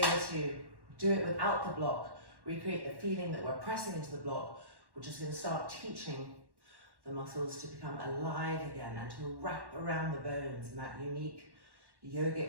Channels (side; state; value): left; late; 1.1 ms